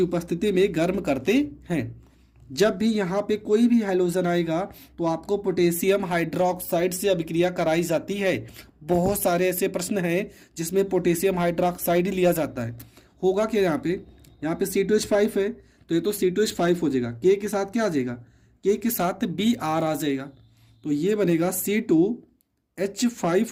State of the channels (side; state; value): both; identical; correlation 1.00